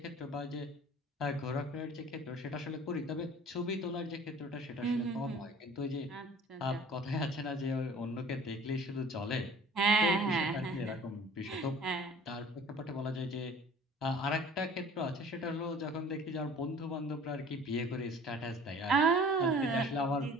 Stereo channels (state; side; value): normal; both; correlation 0.48